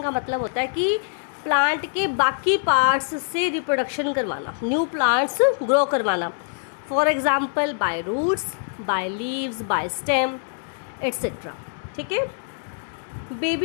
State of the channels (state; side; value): silent; right; 63 dB below the other